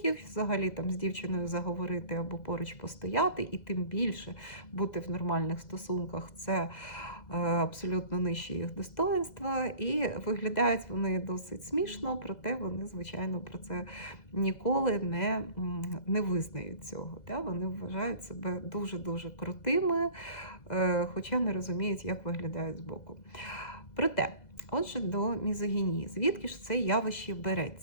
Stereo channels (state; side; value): late; right; 2.0 ms